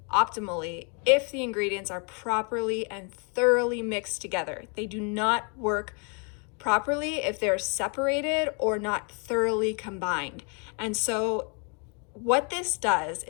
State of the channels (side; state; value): right; quieter; 36.8 dB